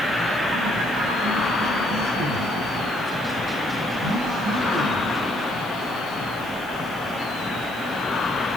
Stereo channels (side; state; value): right; noise; hiss, 19 dB below the sound